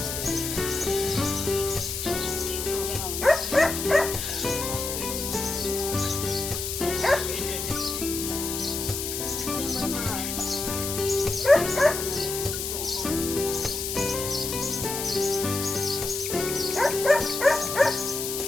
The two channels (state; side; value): noise; left; hiss, 4 dB below the sound